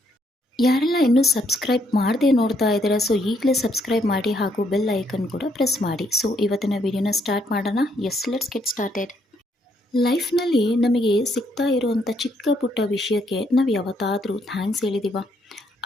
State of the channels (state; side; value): normal; both; correlation 0.72